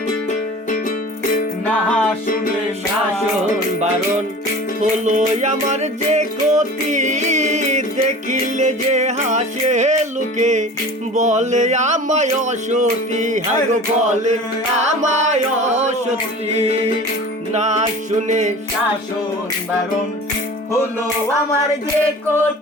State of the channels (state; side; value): normal; both; correlation 0.39